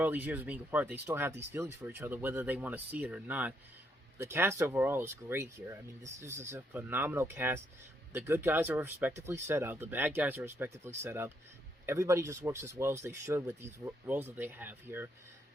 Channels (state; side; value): normal; both; correlation 0.74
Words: these years of being apart, they still have these feelings for each other, whether they want to see it or not. The cast overall is great here. I mean, this is a phenomenal cast. The good guys are respectively set up. The bad guys are respectively set up. Everybody just works as well as they should with these roles that they have here.